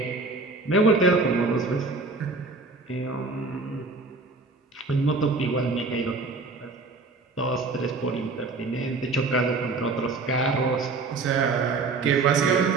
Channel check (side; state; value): left; quieter; 3.8 dB